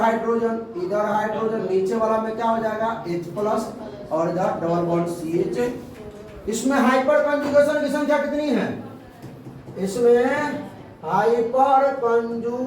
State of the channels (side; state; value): both; identical; correlation 1.00